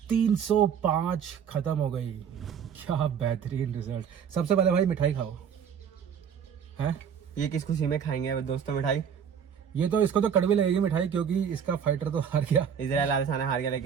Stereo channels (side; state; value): left; quieter; 7.7 dB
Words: 305 खत्म हो गई। क्या बेहतरीन रिजल्ट। सबसे पहले भाई मिठाई खाओ। हैं ये किस खुशी में खाएंगे दोस्तों मिठाई? ये तो इसको तो कड़वी लगेगी मिठाई, क्योंकि इसका फाइटर तो हार गया। इजराइल आदेसाना हार गया,